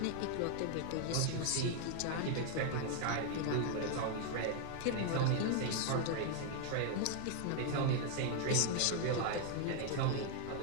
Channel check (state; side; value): different; both; correlation 0.00